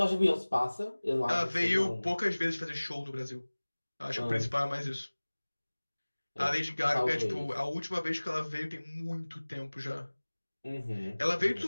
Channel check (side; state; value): both; inverted; correlation -1.00